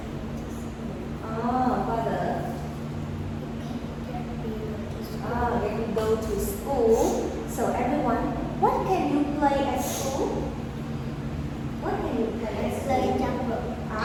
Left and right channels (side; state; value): both; identical; correlation 1.00